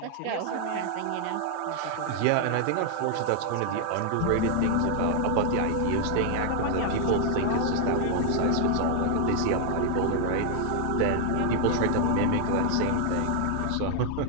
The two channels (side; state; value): both; different; correlation 0.00